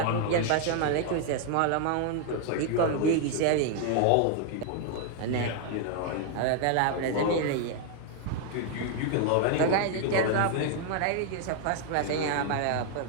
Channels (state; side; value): different; both; correlation 0.00